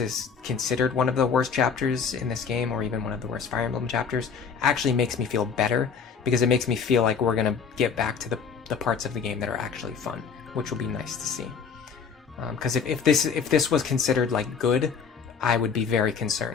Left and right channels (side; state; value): right; quieter; 6.1 dB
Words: considered one of the worst chapters in this game, or even one of the worst Fire Emblem chapters, actually makes me feel better, because it makes me feel like we're gonna get back to the parts of the game that are actually fun, which will be nice to see. Because if this was considered like good, I would be very